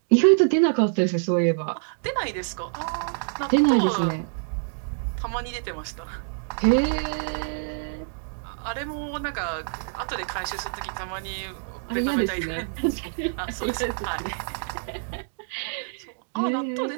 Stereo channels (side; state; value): left; silent; digital silence